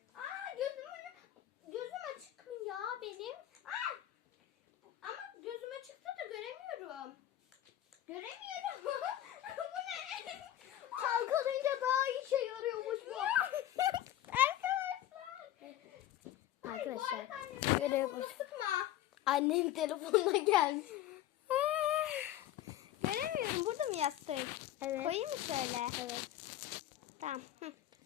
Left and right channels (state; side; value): quieter; right; 12.7 dB